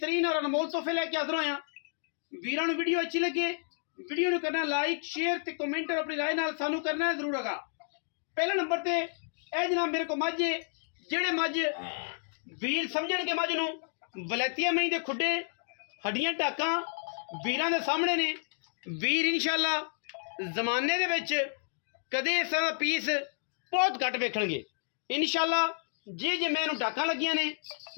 और अनमोल तोहफे लैके हाज़र होए हां। वीरां नूं वीडियो अच्छी लगे वीडियो नूं करना लाइक शेयर ते कमेंट और अपनी राय नाल सानू करना है जरूर। आगा पहले नंबर ते ए जनाब मेरे को मझ जेड़े मझ वीर समझणगे मझ नूं वलैतिया मई दे खुडे हड्डियां टाकां वीरां दे सामने ने। वीर इंशाअल्लाह जमाने दे विच कदे इस तरह दा पीस बहुत घट वेखणगे इंशाअल्लाह। जे जे मैं टाकां लगियां ने,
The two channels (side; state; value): right; silent; digital silence